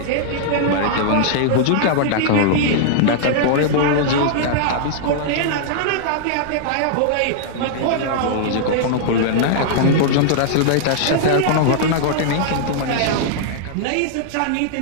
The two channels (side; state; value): both; different; correlation -0.01